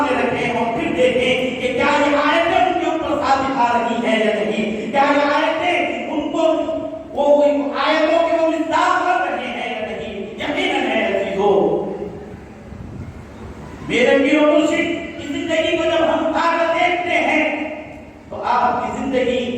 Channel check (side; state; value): both; identical; correlation 1.00